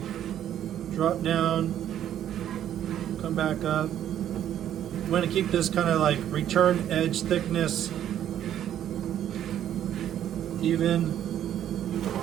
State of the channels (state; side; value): quieter; left; 10.8 dB